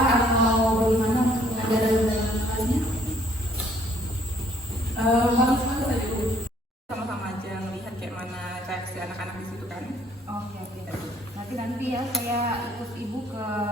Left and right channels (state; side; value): normal; both; correlation 0.63